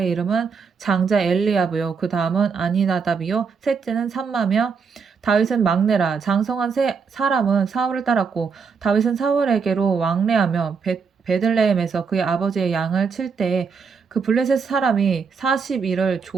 이름은 장자 엘리야브요 그 다음은 아니나답이요 셋째는 삼마며 다윗은 막내라. 장성한 사람은 사울을 따랐고 다윗은 사울에게로 왕래하며 베들레헴에서 그의 아버지의 양을 칠 때에 그 블레셋 사람이 40일을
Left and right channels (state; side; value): quieter; left; 5.6 dB